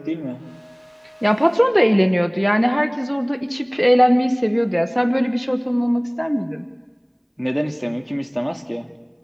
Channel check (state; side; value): identical; both; correlation 1.00